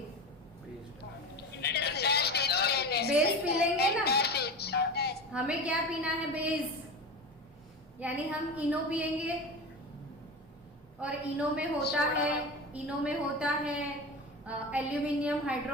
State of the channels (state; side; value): normal; both; correlation 0.27